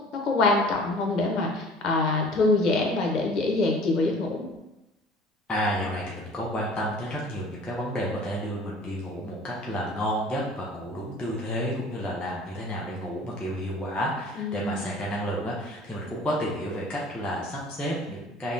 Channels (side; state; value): both; normal; correlation 0.48